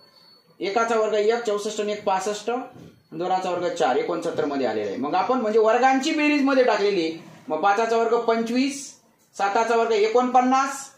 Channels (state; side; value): identical; both; correlation 1.00